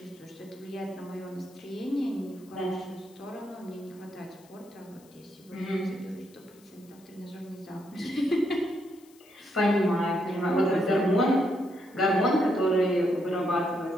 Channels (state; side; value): noise; left; hiss, 28 dB below the sound